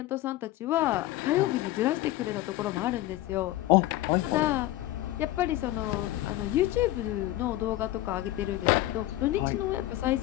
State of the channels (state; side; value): quieter; right; 15.8 dB